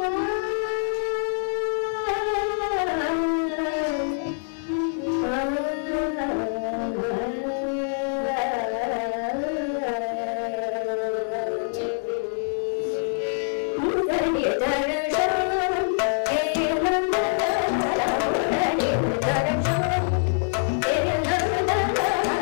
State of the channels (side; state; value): right; silent; 58 dB below the other